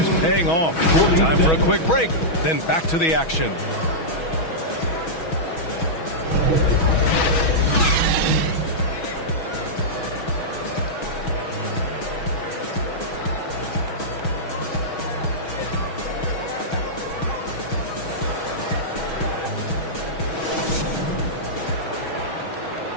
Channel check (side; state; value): right; late; 6.2 ms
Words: paying off. Time for a quick break, then back to the action.